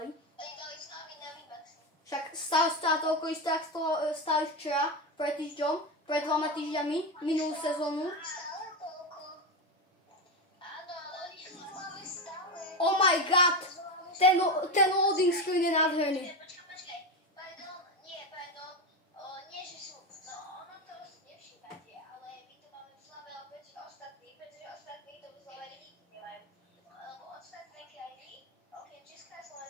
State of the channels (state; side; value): normal; both; correlation 0.15